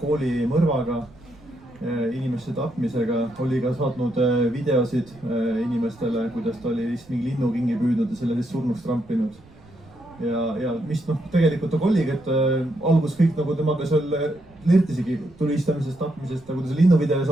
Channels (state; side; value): noise; right; rumble, 25 dB below the sound